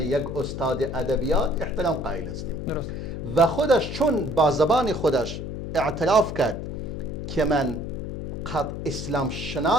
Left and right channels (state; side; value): noise; left; hum, 6 dB below the sound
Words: استاد ادبیات احترام قائل هستیم و خودش چون با زبان خودش اعتراف کرد که من قد اسلام